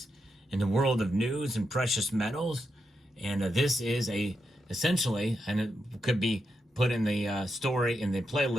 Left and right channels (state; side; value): normal; both; correlation 0.84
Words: in the world of news and precious metals. And this is essentially, and it could be put in the story in the